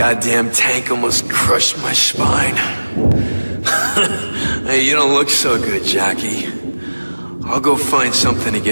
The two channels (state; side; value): inverted; both; correlation -1.00